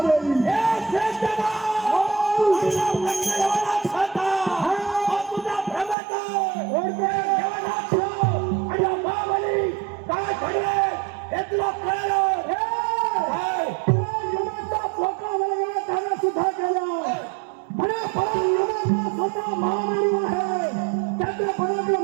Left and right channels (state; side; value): drops out; left; at 6.0 s